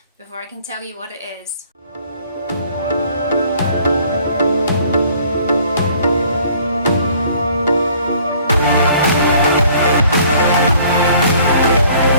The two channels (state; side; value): inverted; both; correlation -0.57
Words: before I can tell you what it is.